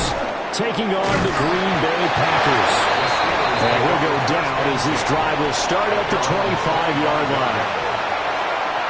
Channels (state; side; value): identical; both; correlation 1.00